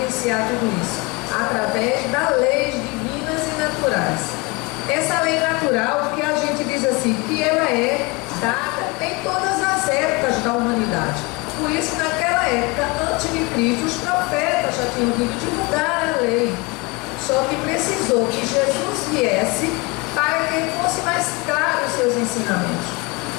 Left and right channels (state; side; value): quieter; right; 26.1 dB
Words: tudo isso? Através das leis divinas e naturais. Essa lei natural que a gente diz assim, que ela é dada em todas as épocas da humanidade. Por isso, naquela época, antes de Cristo, os profetas já tinham vindo divulgar a lei. Só que precisou que Jesus viesse para que fosse mais claro os seus ensinamentos.